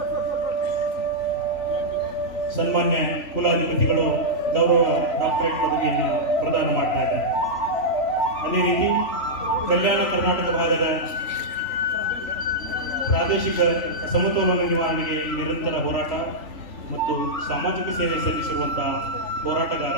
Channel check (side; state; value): right; late; 3.4 ms